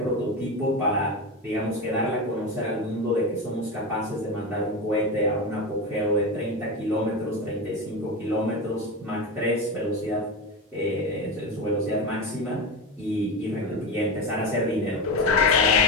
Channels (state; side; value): normal; both; correlation 0.20